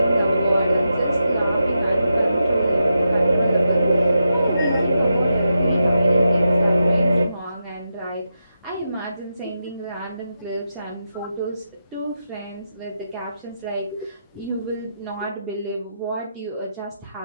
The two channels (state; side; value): inverted; both; correlation -0.86